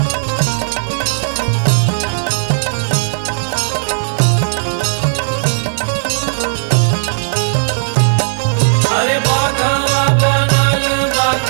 अरे बाघवा बनल बाक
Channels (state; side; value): silent; left; digital silence